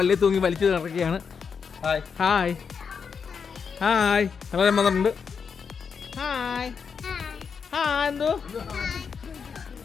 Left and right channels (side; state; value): right; quieter; 6.1 dB